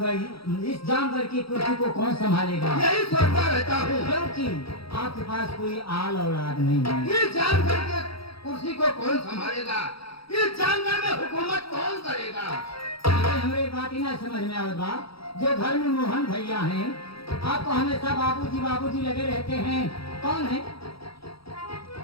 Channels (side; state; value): right; late; 0.75 ms